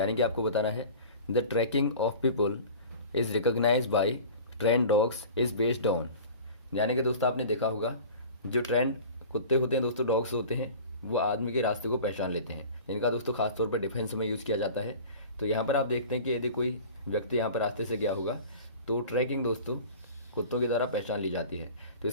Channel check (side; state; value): both; inverted; correlation -0.39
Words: कि आपको बताना है the tracking of people is recognized by trained dogs is based on. यानी कि दोस्तों आपने देखा होगा जो ट्रेंड कुत्ते होते हैं दोस्तों, डॉग्स होते हैं, वो आदमी के रास्ते को पहचान लेते हैं, जिनका दोस्तों खासतौर पर डिफेंस में यूज़ किया जाता है। तो यहाँ पर आप देखते हैं कि यदि कोई व्यक्ति यहाँ पर रास्ते से गया होगा तो ट्रैकिंग दोस्तों कुत्तों के द्वारा पहचान ली जाती है। तो